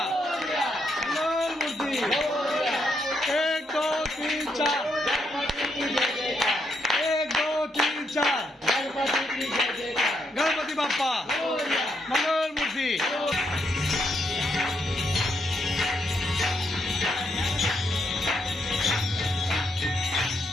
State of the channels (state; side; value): normal; both; correlation 0.78